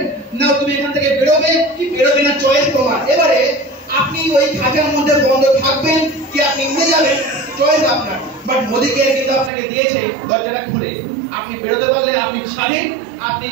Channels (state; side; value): drops out; left; at 9.5 s